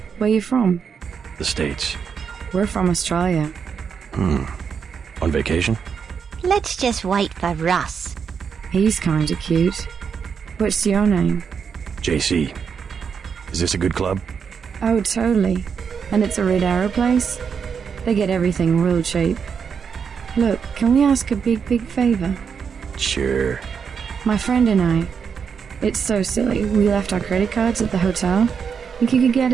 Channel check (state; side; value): quieter; left; 6.6 dB